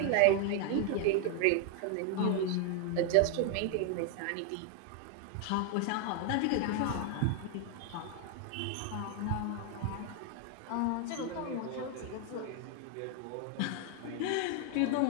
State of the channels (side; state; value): both; different; correlation 0.01